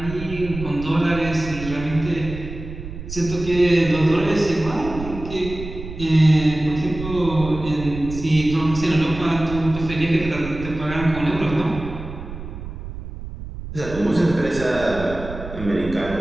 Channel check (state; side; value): noise; right; rumble, 10 dB below the sound